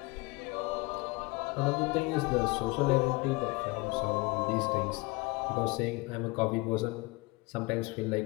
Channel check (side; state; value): right; quieter; 24.4 dB